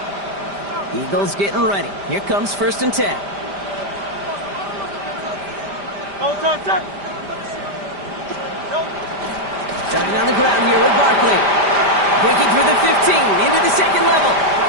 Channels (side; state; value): left; late; 5.0 ms